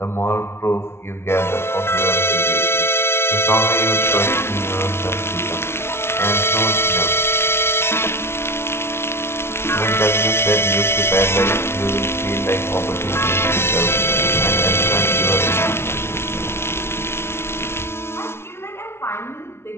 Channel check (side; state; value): right; late; 0.12 ms